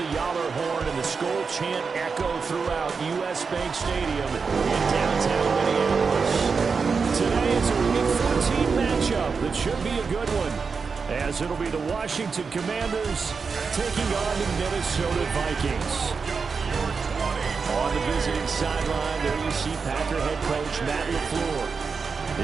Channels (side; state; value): left; quieter; 5.2 dB